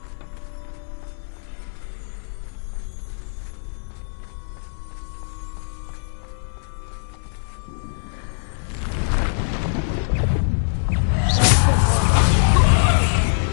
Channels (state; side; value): silent; right; 64 dB below the other